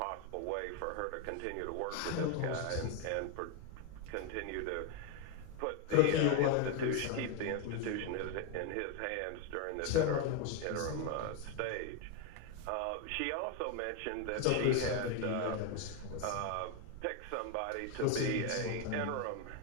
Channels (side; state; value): both; different; correlation 0.01